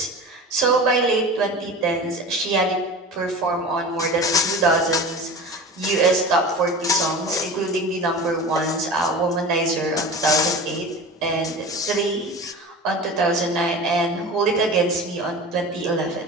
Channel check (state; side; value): normal; both; correlation 0.34